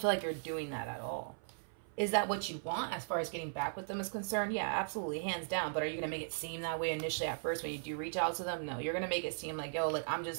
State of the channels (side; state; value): left; silent; 53 dB below the other